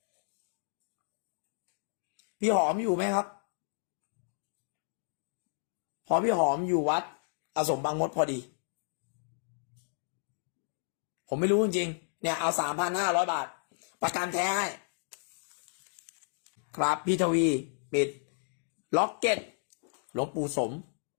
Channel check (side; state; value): right; silent; digital silence